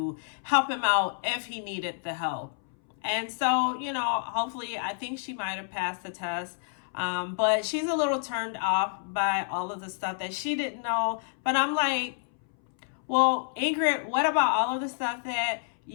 help him out if he needed the help. And so, you know, hopefully, I think she might have passed the test. But she's a little turned off by all of the stuff that she didn't know. But I'm like, well, Ingrid, what about all of the stuff that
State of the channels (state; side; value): silent; right; 59 dB below the other